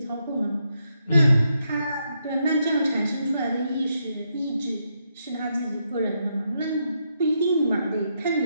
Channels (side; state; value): both; inverted; correlation -0.80